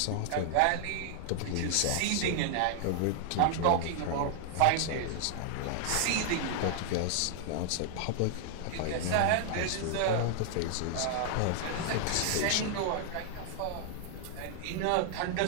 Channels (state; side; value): different; both; correlation 0.00